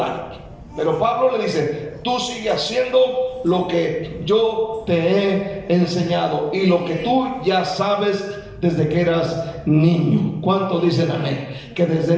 Pero Pablo le dice: tú sigue haciendo lo que yo te he enseñado y lo que tú ya sabes desde que eras niño. ¿Cuántos dicen amén? Que desde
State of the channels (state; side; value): identical; both; correlation 1.00